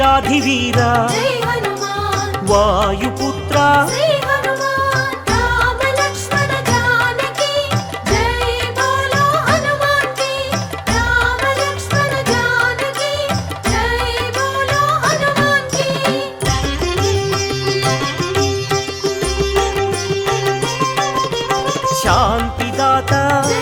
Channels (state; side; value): identical; both; correlation 1.00